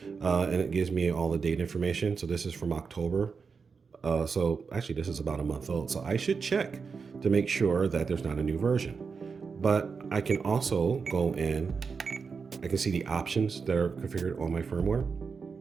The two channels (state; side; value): quieter; left; 5.3 dB